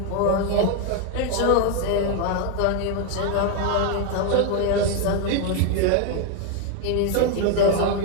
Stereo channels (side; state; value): both; different; correlation 0.01